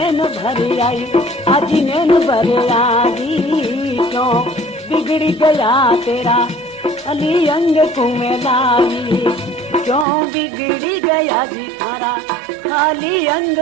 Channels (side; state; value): left; drops out; at 10.1 s